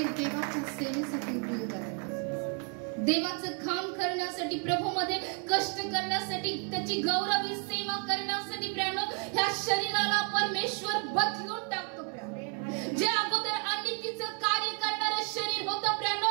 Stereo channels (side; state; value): left; quieter; 39.7 dB